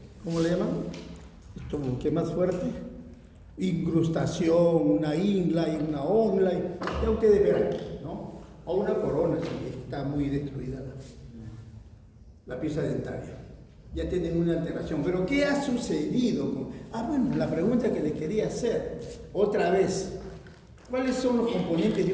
¿cómo le llaman? Esto, ¿qué más fuerte? Incrustación, una inlay, una onlay, ya ustedes verán, ¿no? O una corona si está muy destruida la pieza dentaria. Ya tienen una alteración. Pero ¿qué ha sucedido? Bueno, la pregunta que les quería hacer, otra vez, ¿cuáles son los componentes de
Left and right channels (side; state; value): both; identical; correlation 1.00